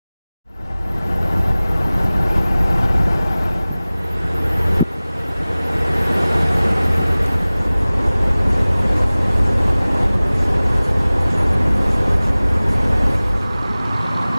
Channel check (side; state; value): both; inverted; correlation -0.98